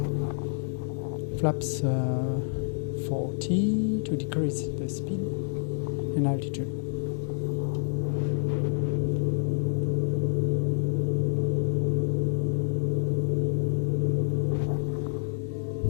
Flaps 40 to decrease the speed and altitude.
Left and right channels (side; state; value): right; silent; digital silence